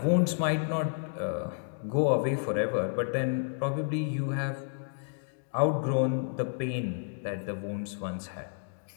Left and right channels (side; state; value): right; silent; digital silence